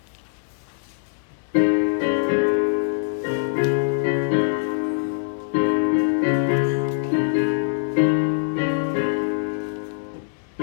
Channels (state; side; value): silent; right; digital silence